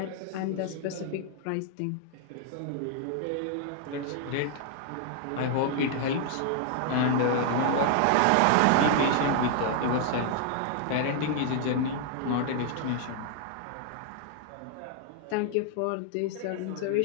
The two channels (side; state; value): both; different; correlation 0.00